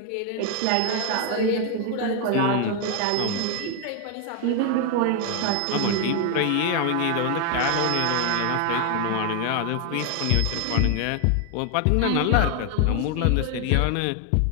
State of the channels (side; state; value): both; different; correlation 0.01